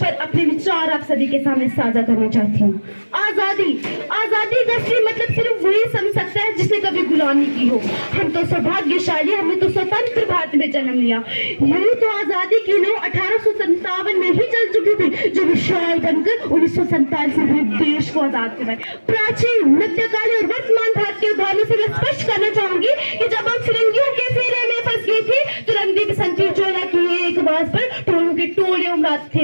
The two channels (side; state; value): both; inverted; correlation -1.00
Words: अपने विचार आप सभी के सामने साझा करना चाहती हूँ। आजादी, आजादी का मतलब सिर्फ वही समझ सकता है जिसने कभी गुलामी की हो। हम तो सौभाग्यशाली, हमने तो स्वतंत्र भारत में जन्म लिया। यही तो आजादी की लो 1857 में ही चल चुकी थी, जो विशाल बनकर 1947 में देश को आजाद करवाए। प्राचीन, मध्यकालीन और वर्तमान भारत के उदाहरणों से मैं स्पष्ट करना चाहूंगी कि जब हम फिरंगियों के फेरे में फंस गए थे तो रंगदी बसंती चोला की एक आवाज पर टोलों के टोले उमड़ाते